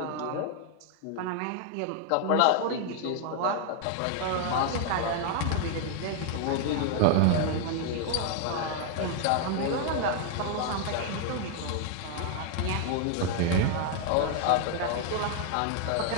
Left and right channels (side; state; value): both; different; correlation 0.00